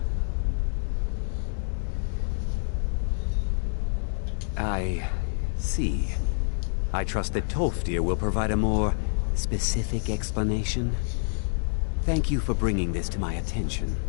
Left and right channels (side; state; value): right; silent; digital silence